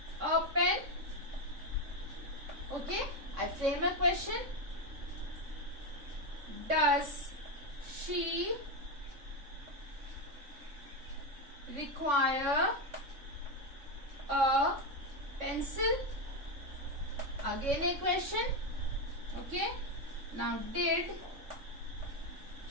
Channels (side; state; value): left; late; 3.6 ms